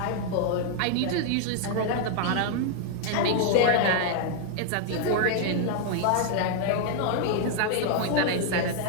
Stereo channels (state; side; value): different; both; correlation 0.00